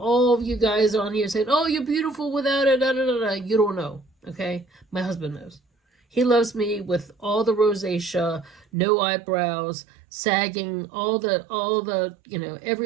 of you guys on here saying, oh, you're beautiful without it, da, da, da, da. You don't know, okay? My husband knows. He loves me with all the rosacea, no eyebrows, sagging, all the you know,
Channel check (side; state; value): left; drops out; at 8.7 s